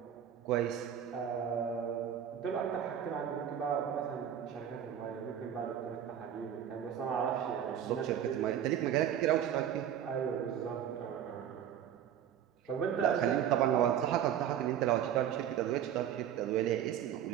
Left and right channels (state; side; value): quieter; left; 9.7 dB